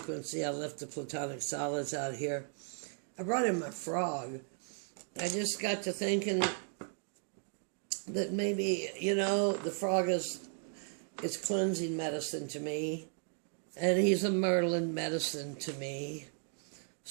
I left the platonic solids out here. I brought in my frog. I just got to thinking that maybe, you know, the frog is cleansing medicine to me. And he's a Merlin medicine to me.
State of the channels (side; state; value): left; silent; 54 dB below the other